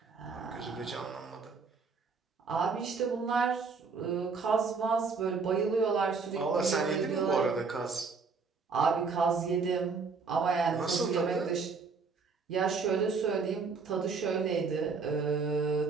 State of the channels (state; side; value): quieter; left; 4.9 dB